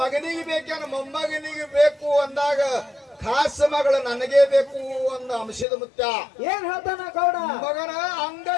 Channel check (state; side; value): drops out; right; at 5.7 s